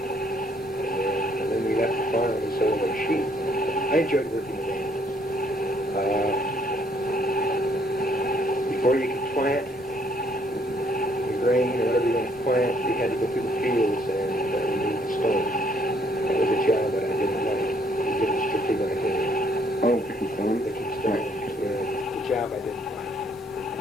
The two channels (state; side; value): normal; both; correlation 0.67